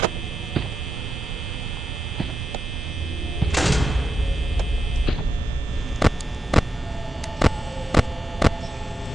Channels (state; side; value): normal; both; correlation 0.86